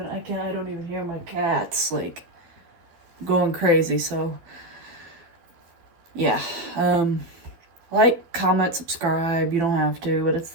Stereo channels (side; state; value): left; late; 12 ms